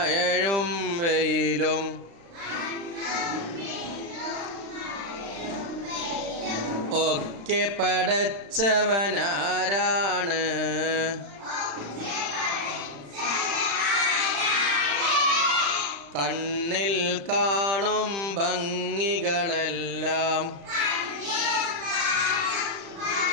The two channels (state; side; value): late; left; 35 ms